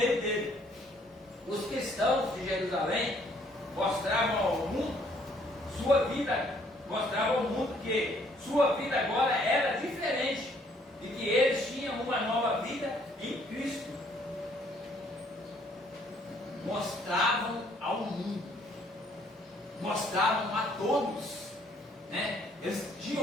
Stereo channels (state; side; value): normal; both; correlation 0.64